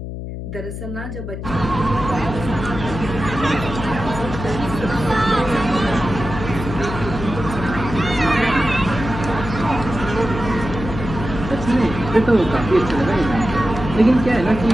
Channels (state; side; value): noise; left; hum, 8 dB below the sound